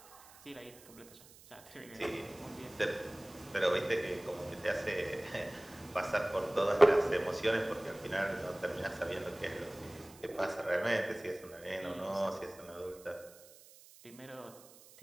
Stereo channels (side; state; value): right; noise; hiss, 22 dB below the sound